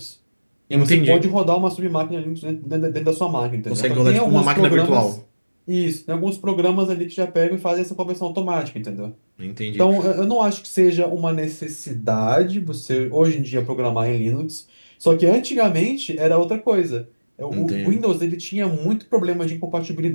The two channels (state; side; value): inverted; both; correlation -1.00